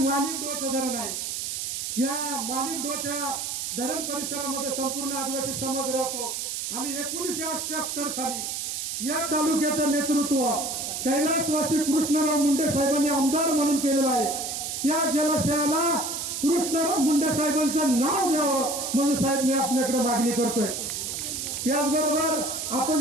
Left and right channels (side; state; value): right; noise; hiss, 4 dB below the sound